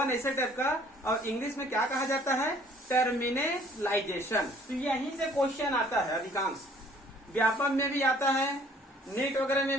ऐसे टाइप का, और इंग्लिश में क्या कहा जाता है, टर्मिनलाइजेशन। तो यहीं से क्वेश्चन आता है, अधिकांश व्यापम में भी आता है, नीट वगैरह में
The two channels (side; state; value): both; normal; correlation 0.57